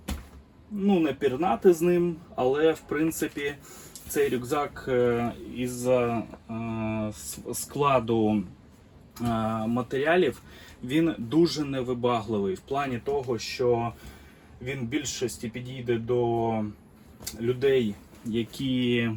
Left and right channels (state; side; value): identical; both; correlation 1.00